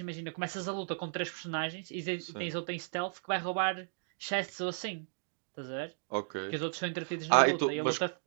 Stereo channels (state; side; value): silent; left; digital silence